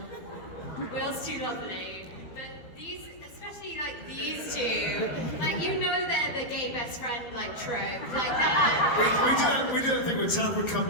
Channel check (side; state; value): right; late; 12 ms